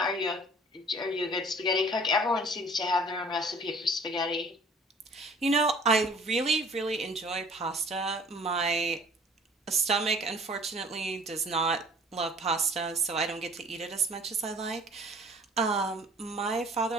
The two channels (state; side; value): normal; both; correlation 0.51